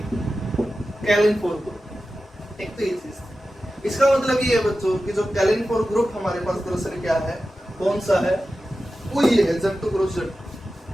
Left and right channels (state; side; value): normal; both; correlation 0.93